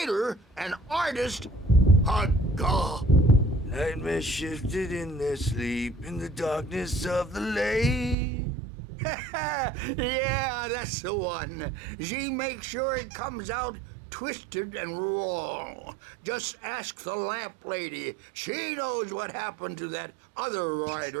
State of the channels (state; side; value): drops out; left; at 8.2 s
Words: an artist, a god. Nightmare shifted in their sleep in the darkness of the lake. Yeah, that's the one. She makes sure it comes out twisted and wrong. Just ask the lamp lady. She knows what happened to that other